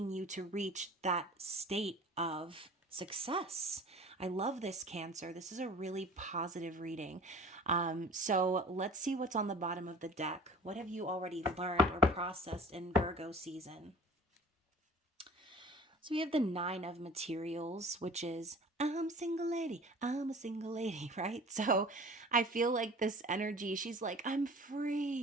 you to reach that state of success. I love this, Cancer. This is a really positive reading. So let's see what's on the bottom of the deck. What have you already learned or processed in Virgo season? So we have the Nine of Materials, which is I'm a single lady, right? So I feel like this energy, she's like, I'm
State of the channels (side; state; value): both; normal; correlation 0.44